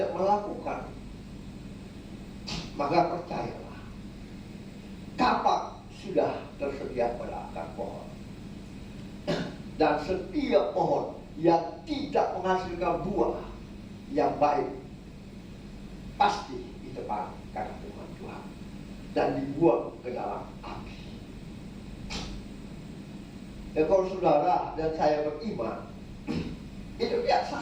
melakukan, maka percayalah, kapak sudah tersedia pada akar pohon. Dan setiap pohon yang tidak menghasilkan buah yang baik pasti ditebang karena firman Tuhan dan dibuang ke dalam api. Dan kalau saudara dan saya beriman, itu tidak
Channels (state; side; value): identical; both; correlation 1.00